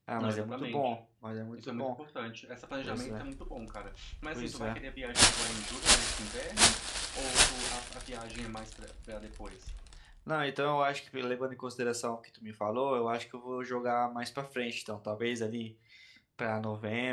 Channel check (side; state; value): both; identical; correlation 1.00